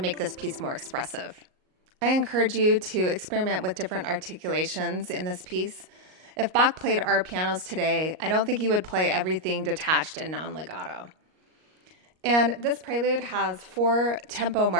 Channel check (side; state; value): left; late; 38 ms